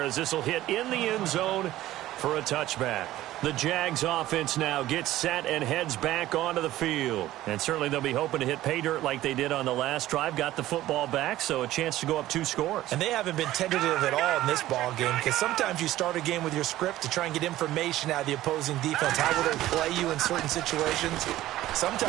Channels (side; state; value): left; quieter; 15.0 dB